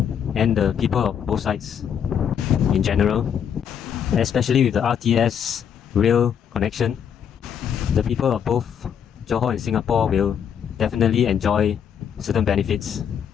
and the people of both sides in general, especially with the RTS rail connection. The people of both Johor and Singapore will definitely enjoy certain benefits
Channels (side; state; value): right; quieter; 8.2 dB